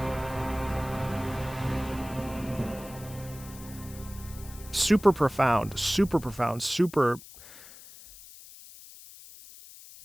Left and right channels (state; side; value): noise; left; hiss, 18 dB below the sound